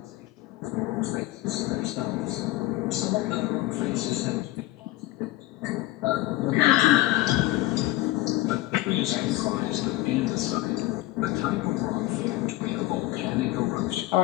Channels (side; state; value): right; quieter; 17.2 dB